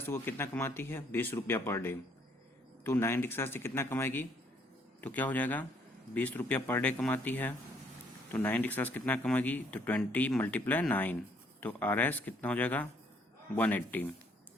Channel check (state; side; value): normal; both; correlation 0.66